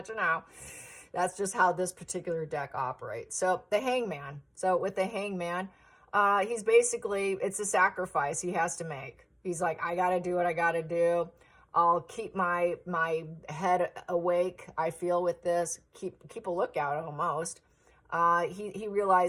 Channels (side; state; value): both; identical; correlation 1.00